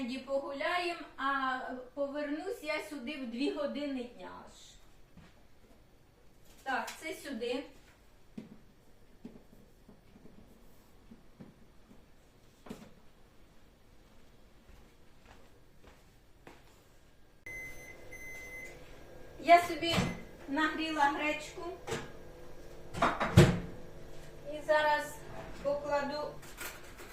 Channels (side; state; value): both; identical; correlation 1.00